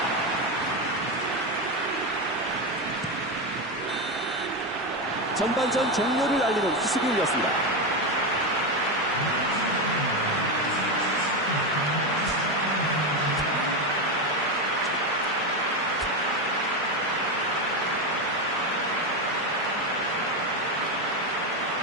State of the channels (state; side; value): normal; both; correlation 0.12